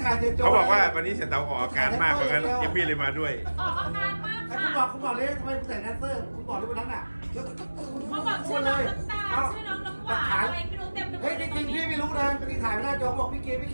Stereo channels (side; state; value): both; inverted; correlation -1.00